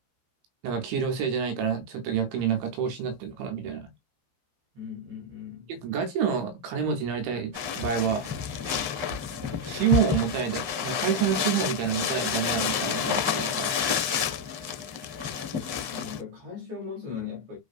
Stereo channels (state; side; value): late; left; 15 ms